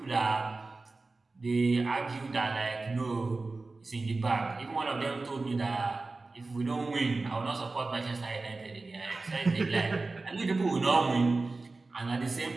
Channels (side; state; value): left; quieter; 3.5 dB